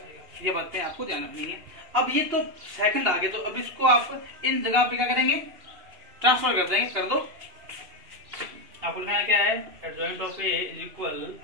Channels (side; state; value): left; late; 2.9 ms